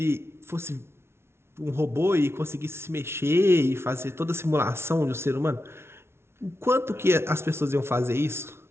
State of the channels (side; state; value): left; late; 0.12 ms